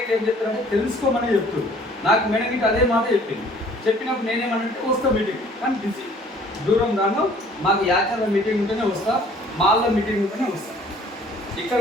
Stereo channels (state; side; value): normal; both; correlation 0.55